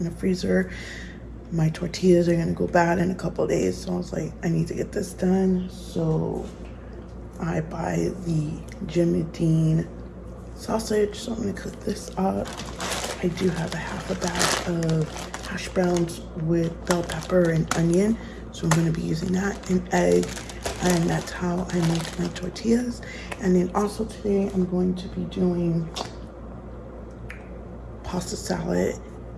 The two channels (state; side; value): identical; both; correlation 1.00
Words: in the freezer. My tortillas are going to go bad in a couple of days. So I was like, I need to get this done. So I buy the Jimmy Dean sausage. So I'm going to cook this up. I do have a half a bag of hash browns with bell pepper and onion. So I'm going to be using that, and egg, and that's how I make my tortillas. And then also today I'm going to be doing pasta salad,